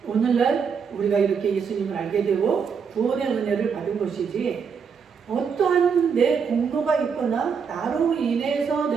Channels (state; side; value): quieter; left; 6.3 dB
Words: 오늘날 우리가 이렇게 예수님을 알게 되고 구원의 은혜를 받은 것이지, 어떠한 내 공로가 있거나 나로 인해서